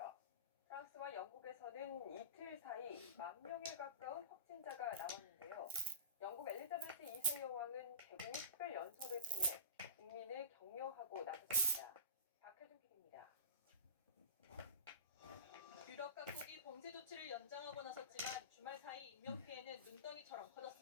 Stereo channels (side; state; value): both; inverted; correlation -0.33